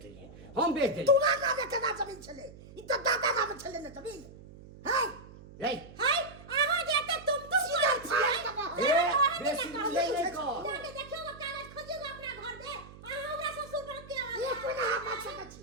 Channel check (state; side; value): noise; right; hum, 18 dB below the sound